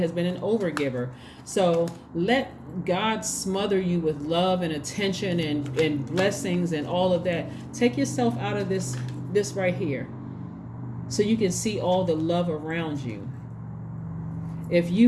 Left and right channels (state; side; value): identical; both; correlation 1.00